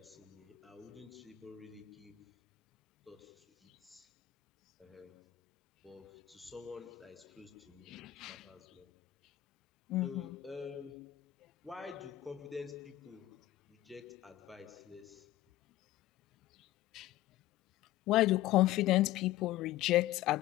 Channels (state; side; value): quieter; right; 15.0 dB